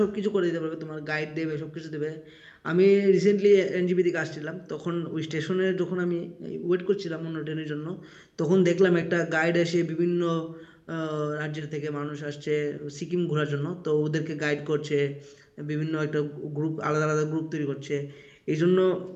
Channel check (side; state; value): both; identical; correlation 1.00